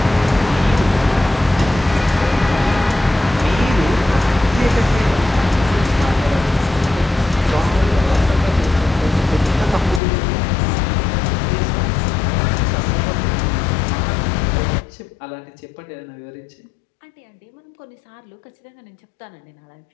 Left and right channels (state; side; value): drops out; right; at 10.0 s